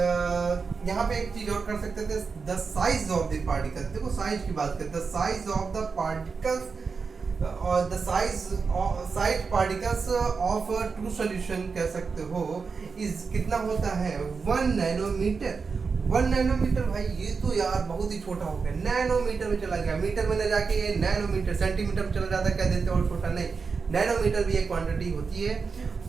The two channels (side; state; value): left; quieter; 5.1 dB